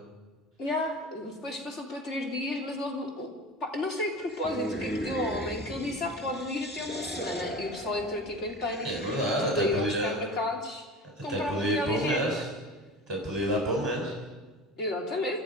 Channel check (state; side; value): normal; both; correlation 0.34